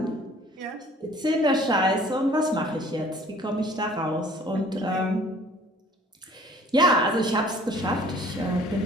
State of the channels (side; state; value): both; normal; correlation 0.53